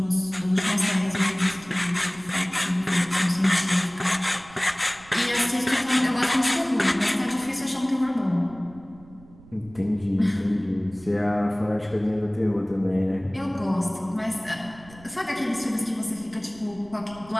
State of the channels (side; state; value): right; noise; rumble, 22 dB below the sound